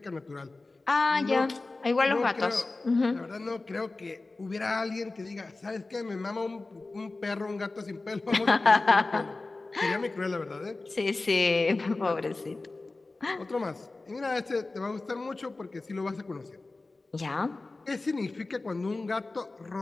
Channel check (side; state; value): right; quieter; 3.4 dB